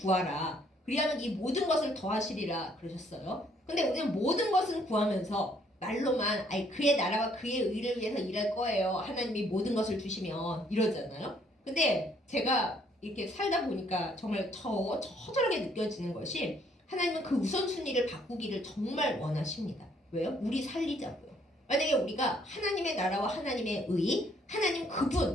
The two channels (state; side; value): normal; both; correlation 0.66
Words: 그리하면 이 모든 것을 더하시리라 그러셨어요. 근데 우리는 모든 것은 구하면서 말로만 그의 나라와 그의 의를 위해서 일할 거예요. 하나님이 모든 것을 주시면 이러잖아요. 근데 제가 이렇게 살다 보니까 정말 처절하게 느껴지는 것이, 하나님은 그 우선순위를 바꾸기를 정말 원하십니다. 왜요? 우리 살리자고요. 만약에 우리가 하나님의 나라와 하나님의 의, 하나님